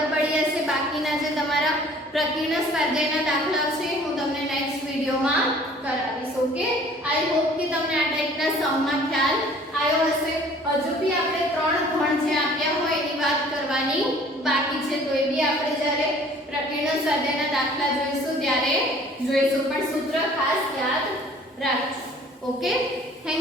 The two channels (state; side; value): normal; both; correlation 0.52